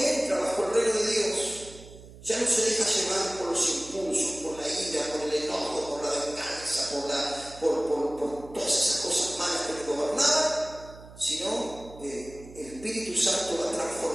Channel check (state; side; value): noise; right; hum, 18 dB below the sound